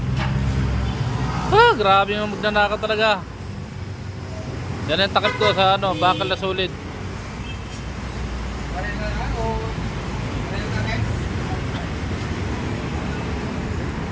Grabe yung magnanakaw talaga. Yan yung takip ko sa bakal na solid.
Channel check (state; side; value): identical; both; correlation 1.00